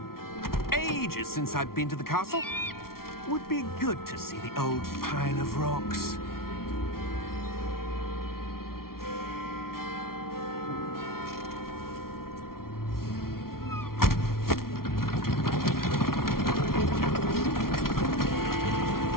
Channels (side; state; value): right; late; 0.93 ms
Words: Ages since I've been to the castle. Would be good to see the old pile of rocks.